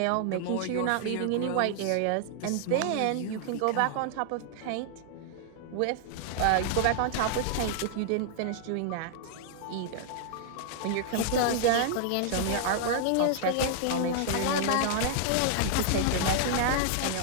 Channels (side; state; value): both; different; correlation 0.00